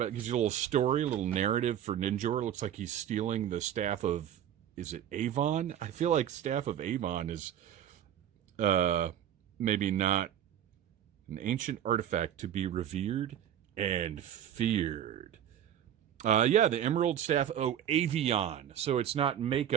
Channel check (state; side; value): quieter; left; 10.3 dB